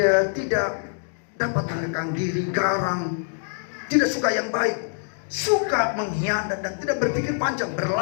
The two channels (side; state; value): right; silent; digital silence